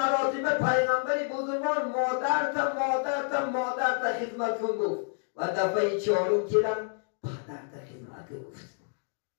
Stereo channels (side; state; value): right; silent; digital silence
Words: پیغمبری بزرگوار مادرت خدمت کن گفت و دفعه 4 کردم پدرت خدمت گفت.